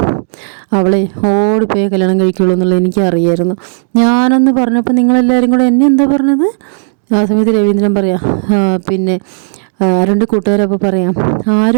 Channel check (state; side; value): silent; left; 73 dB below the other